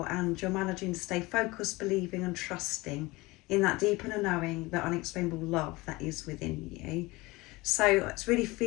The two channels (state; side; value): quieter; right; 22.0 dB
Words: and you're managing to stay focused, believing and trusting in that deep inner knowing, that unexplainable love that is within you. So it's really